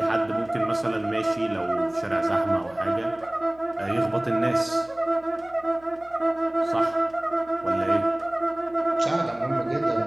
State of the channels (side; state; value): right; noise; hum, 27 dB below the sound